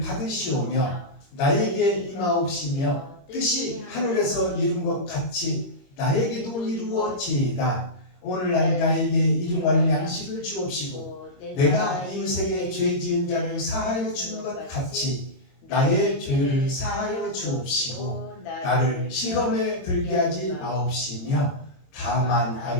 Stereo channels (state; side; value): late; right; 22 ms